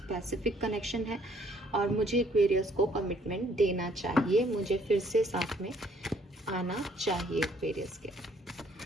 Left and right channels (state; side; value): normal; both; correlation 0.64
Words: कनेक्शन है, और मुझे एक्वेरियस को कमिटमेंट देना चाहिए, मुझे फिर से साथ में आना चाहिए एक्वेरियस के।